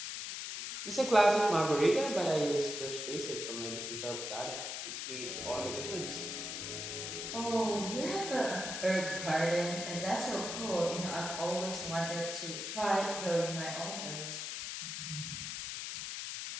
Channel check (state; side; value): noise; left; hiss, 5 dB below the sound